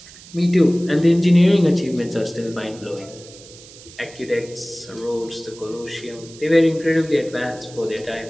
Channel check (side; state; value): right; noise; hiss, 20 dB below the sound